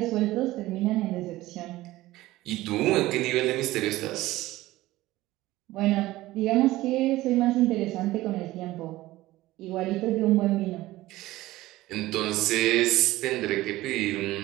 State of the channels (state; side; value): quieter; left; 17.2 dB